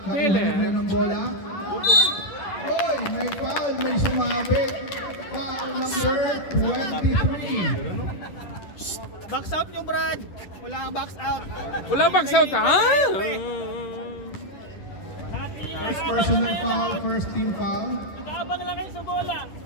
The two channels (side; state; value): right; late; 10 ms